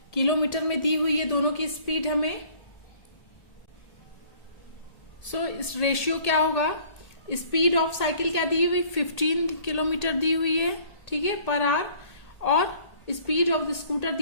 किलोमीटर में दी हुई है दोनों की स्पीड हमें। सो इस रेशियो क्या होगा, स्पीड ऑफ साइकिल क्या दी हुई, 15 किलोमीटर दी हुई है, ठीक है, पर आवर, और स्पीड ऑफ द स्कूटर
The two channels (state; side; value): late; right; 1.8 ms